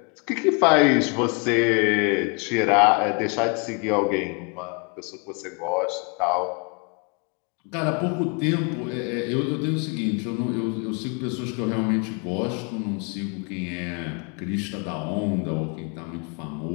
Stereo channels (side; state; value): right; quieter; 34.0 dB